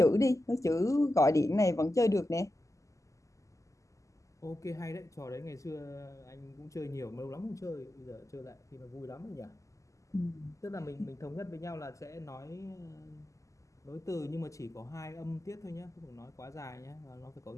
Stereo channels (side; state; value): right; late; 0.16 ms